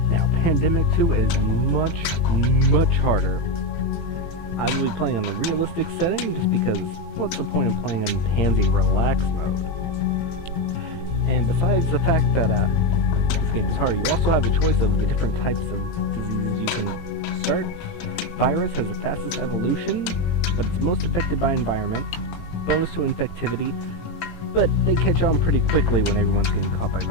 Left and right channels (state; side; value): late; right; 18 ms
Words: Now, Pandemic 2 is much harder. I will be playing on the realistic setting just because what's the point of playing in Pansy Relax mode? And besides the fact that this game is hard, you also have the choice of the different types of diseases you can start. Virus has the fastest evolution, but it's most affected by environment. Bonus to infectivity, but they catch on pretty quickly when everyone's getting caught by